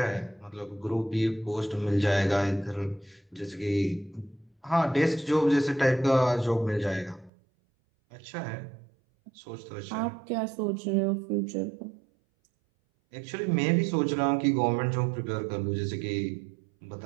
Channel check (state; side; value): drops out; left; at 7.3 s